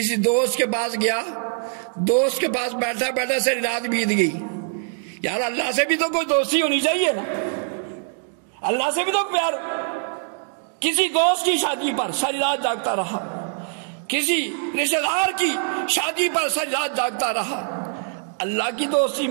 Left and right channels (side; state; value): left; silent; 57 dB below the other